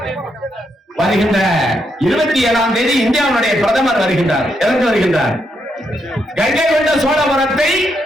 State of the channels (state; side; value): normal; both; correlation 0.79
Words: வருகின்ற 27ஆம் தேதி இந்தியாவுடைய பிரதமர் வருகின்றார். எதற்கு வருகின்றார்? கங்கை கொண்ட சோழபுரத்தை